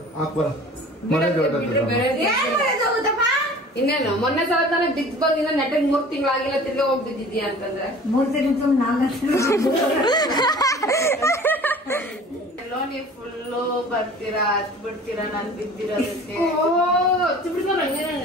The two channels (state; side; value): normal; both; correlation 0.44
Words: ಇನ್ನೇನು ಮೊನ್ನೆ ಸಲ ತಾನೆ ಬಿದ್ದು ಬಂದಿನ ನೆಟ್ಟಿಗೆ 3 ತಿಂಗಳಾಗಿಲ್ಲ, ತಿರ್ಗಿ ಹೋಗಿ ಬಿದ್ದಿದ್ಯಾ ಅಂತಂದ್ರೆ 3 ತಿಂಗಳು 4 ನೀವು ಫುಲ್ಲು ಬರ್ತೀರಾ ಹತ್ ಬಿಡ್ತೀರಾ ನಾನು ಬಿದ್ದಿರೋದಕ್ಕೆ.